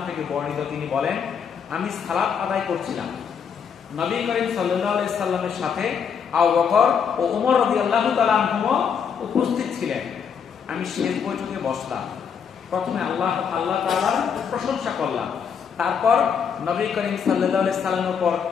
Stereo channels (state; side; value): quieter; right; 7.0 dB